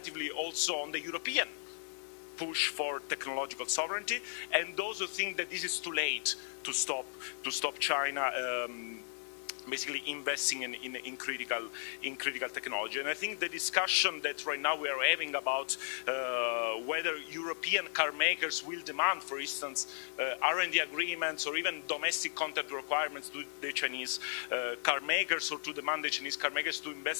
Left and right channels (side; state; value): right; silent; 54 dB below the other